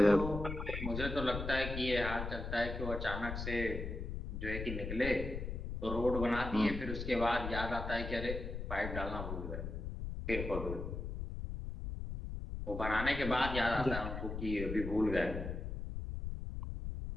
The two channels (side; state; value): left; noise; rumble, 5 dB below the sound